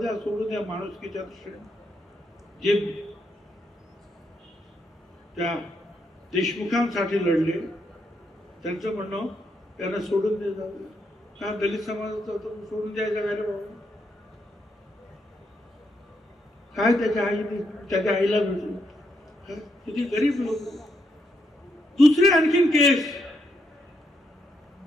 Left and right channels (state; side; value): normal; both; correlation 0.78